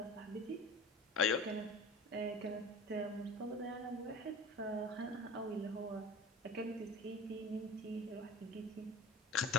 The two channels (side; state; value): both; normal; correlation 0.37